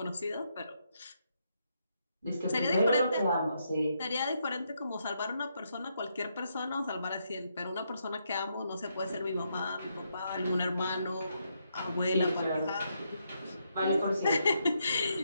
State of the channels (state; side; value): inverted; both; correlation -0.78